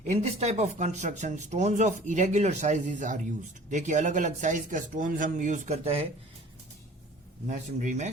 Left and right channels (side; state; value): both; normal; correlation 0.47